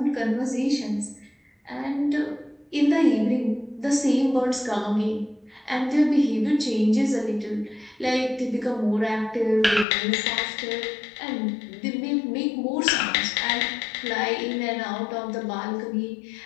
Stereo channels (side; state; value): right; drops out; at 9.9 s